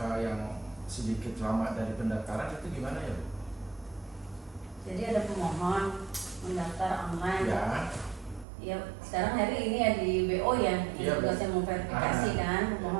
yang sedikit lama dari pendaftaran, itu gimana ya Bu? Jadi ada pemohon mendaftar online. Ya. Ya, sekarang hari ini ya di BO ya, Iya, yang tugasnya memverifikasi kan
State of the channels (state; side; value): drops out; left; at 8.5 s